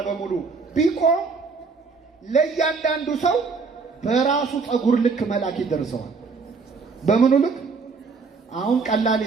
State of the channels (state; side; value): quieter; left; 4.7 dB